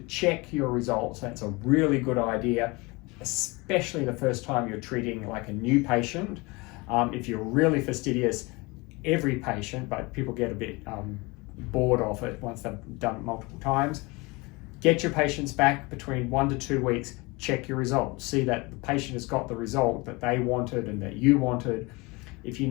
check your results, that's a really good idea, especially the first time you're treating like a new patient. If you're really fastidious, every patient, but people get a bit bored of it once they've done it multiple times. Get your patients back between 1 to 2 weeks, check your results. See that the patient has got the result that they wanted and that you wanted. If you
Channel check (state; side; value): quieter; right; 25.4 dB